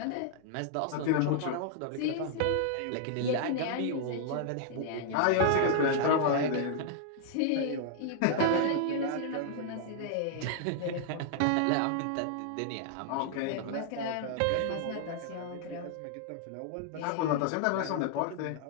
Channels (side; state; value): both; different; correlation -0.01